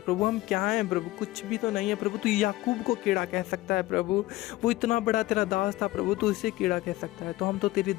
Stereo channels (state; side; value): quieter; right; 17.6 dB